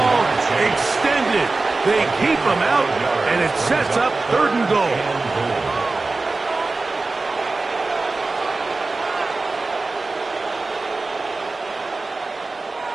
extended. They keep him out, and it sets up third and goal.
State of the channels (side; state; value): left; quieter; 3.5 dB